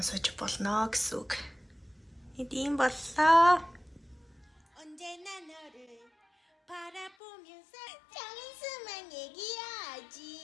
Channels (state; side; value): drops out; right; at 7.1 s